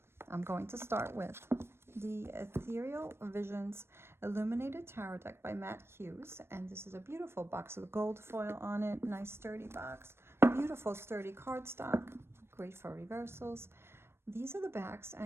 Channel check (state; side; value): late; left; 0.12 ms